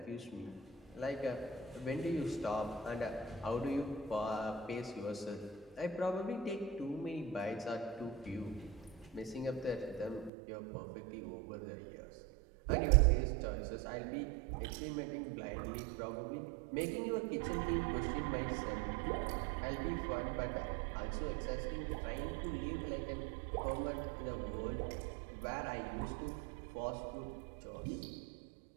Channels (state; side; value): drops out; left; at 10.3 s